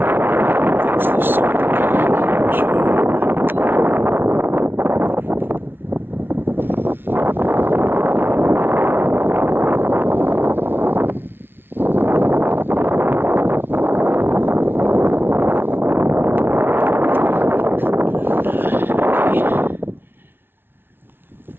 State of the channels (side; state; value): left; late; 0.11 ms